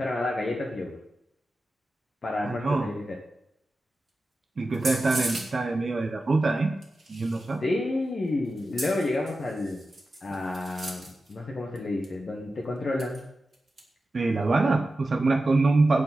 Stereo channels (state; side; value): normal; both; correlation 0.93